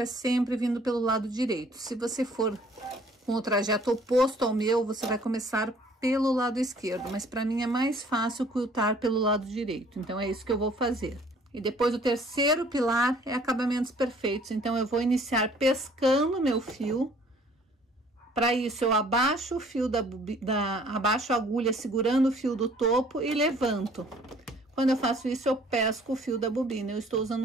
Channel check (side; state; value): both; normal; correlation 0.56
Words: é sempre vindo pelo lado direito. Se você for com o trajeto oposto ao meu, você vai começar pelo lado esquerdo. Mas para mim é mais fácil quiltar pelo lado direito. Então, é isso que eu vou fazer. E depois o terceiro pilar é acabamentos perfeitos. Então, eu vou iniciar pescando meu fio. Para isso, eu abaixo o fio abaixo a agulha segurando o fio do topo e levanto. Quando eu faço isso, eu pesco o fio da bobina. Eu estou usando